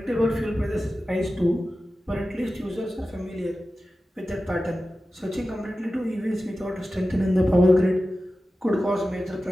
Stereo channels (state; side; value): normal; both; correlation 0.94